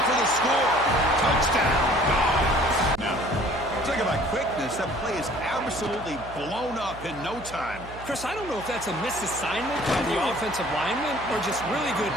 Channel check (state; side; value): noise; right; hum, 15 dB below the sound